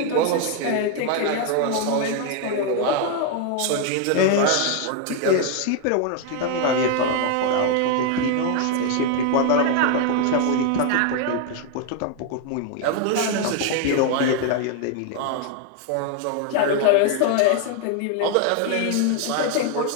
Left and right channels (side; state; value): both; different; correlation 0.00